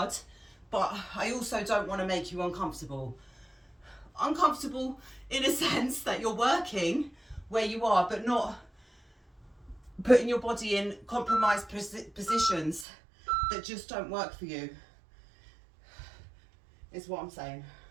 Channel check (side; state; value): left; drops out; at 12.9 s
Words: but I also don't want to make you uncomfortable. Uncomfortable in a sense that you're working where you are, but not putting your body in compromised positions that just don't work for you, is what I'm saying.